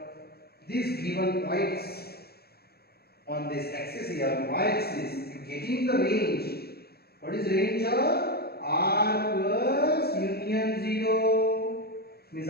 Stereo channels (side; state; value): right; late; 0.46 ms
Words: these given points on this axis here, y-axis, you getting the range. What is range of r plus union 0? Means